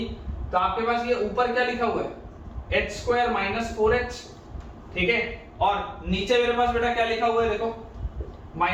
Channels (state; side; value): identical; both; correlation 1.00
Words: तो आपके पास ये ऊपर क्या लिखा हुआ है h स्क्वायर माइनस 4h, ठीक है, और नीचे मेरे पास बेटा क्या लिखा हुआ है देखो